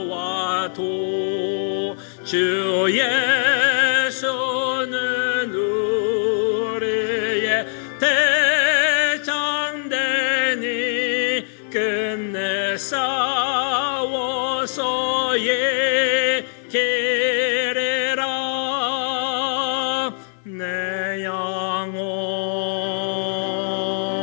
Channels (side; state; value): right; silent; digital silence